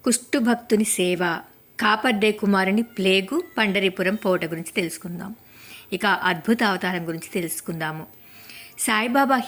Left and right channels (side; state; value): both; identical; correlation 1.00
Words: కుష్ఠుభక్తుని సేవ, కాపర్డే కుమారుని ప్లేగు, పండరీపురం పోట గురించి తెలుసుకుందాం. ఇక అద్భుత అవతారం గురించి తెలుసుకుందాము. సాయిబాబా